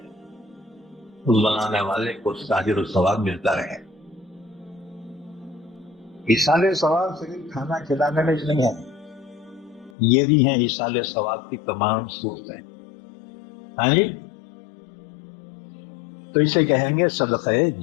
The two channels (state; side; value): drops out; right; at 9.9 s